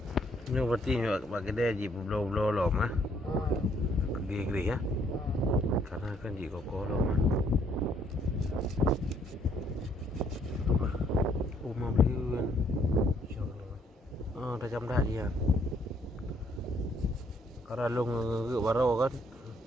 Ini berarti buat kedai je berbelum-belum lom ah. Gede-gede ya. Karena kan je kokoh lom ah. Rumah beli kan. Dah jam dah dia. Kalau long ke baru kan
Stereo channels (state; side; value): normal; both; correlation 0.67